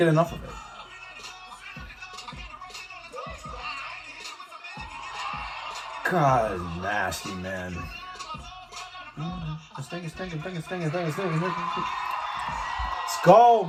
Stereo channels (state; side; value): identical; both; correlation 1.00